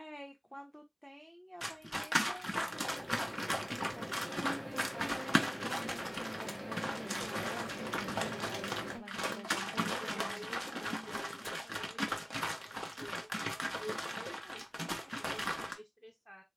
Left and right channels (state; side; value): identical; both; correlation 1.00